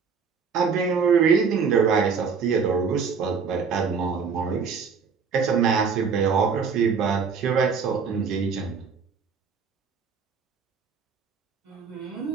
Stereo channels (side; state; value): left; quieter; 5.8 dB